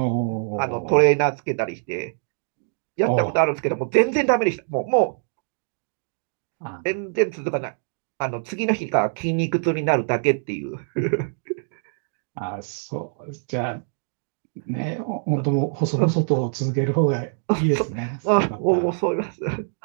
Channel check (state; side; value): silent; left; digital silence